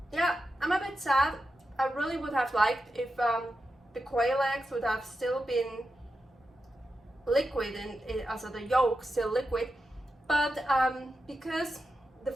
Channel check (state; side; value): normal; both; correlation 0.89